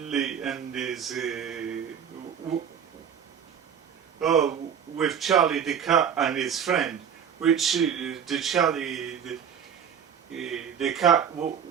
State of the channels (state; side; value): quieter; left; 8.0 dB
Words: and his with Charley the cat and his friend, which the Charley the cat